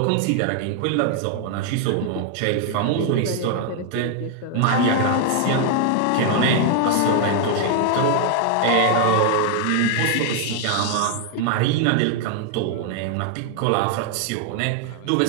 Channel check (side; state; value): both; different; correlation 0.00